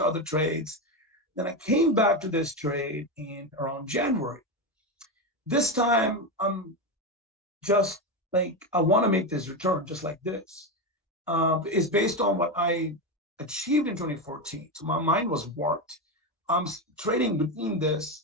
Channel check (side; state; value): both; normal; correlation 0.13